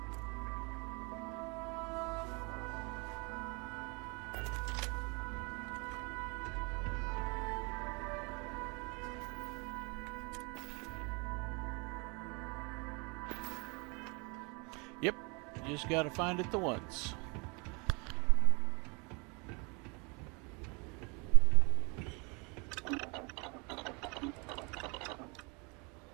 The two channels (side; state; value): left; quieter; 30.9 dB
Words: just gotta find it the once.